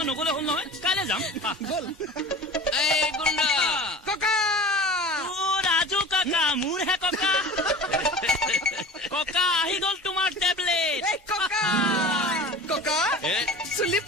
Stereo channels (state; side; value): normal; both; correlation 0.37